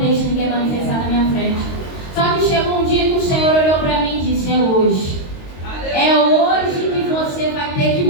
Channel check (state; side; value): late; right; 22 ms